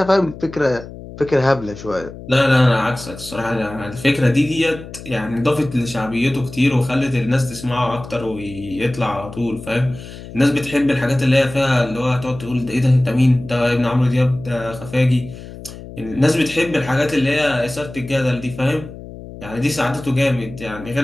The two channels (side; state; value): left; noise; hum, 14 dB below the sound